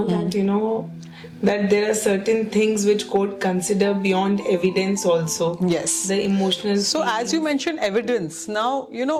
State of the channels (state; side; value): identical; both; correlation 1.00